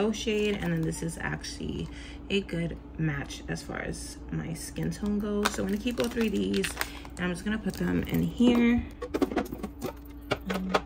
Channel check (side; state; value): both; identical; correlation 1.00